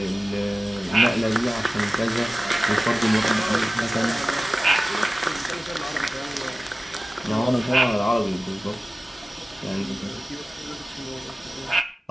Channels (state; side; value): normal; both; correlation 0.97